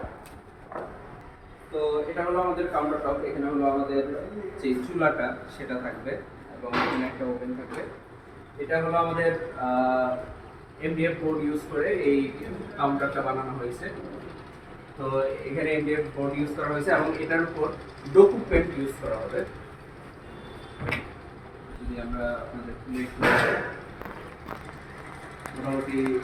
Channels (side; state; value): both; identical; correlation 1.00